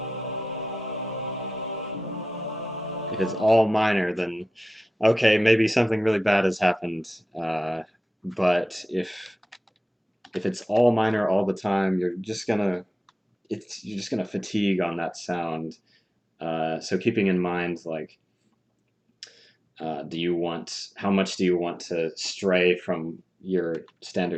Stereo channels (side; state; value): both; normal; correlation 0.94